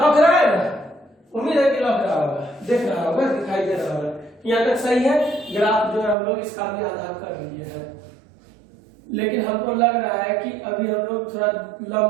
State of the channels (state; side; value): drops out; left; at 6.2 s